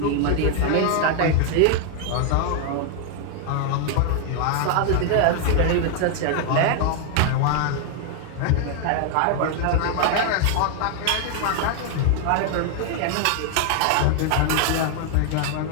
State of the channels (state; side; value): different; both; correlation 0.00